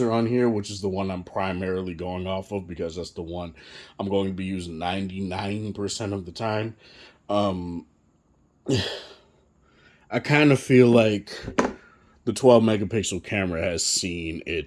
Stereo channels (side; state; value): both; identical; correlation 1.00